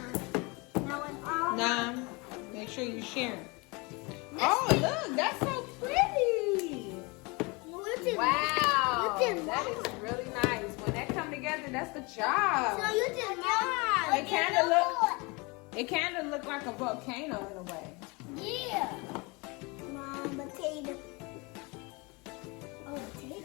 Now it's all mine. 9. Make sure you're sharing. Oh, look, that's so pretty. Wow, You did that mine. is really nice. When that come together, that's the job. So you did mine. It kind of look like a volcano in a way. Yeah. Mom, potato. Oh,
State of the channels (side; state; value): right; quieter; 27.5 dB